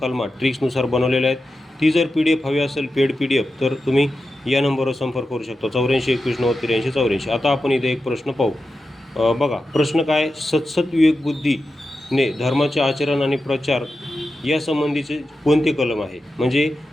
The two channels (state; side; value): normal; both; correlation 0.91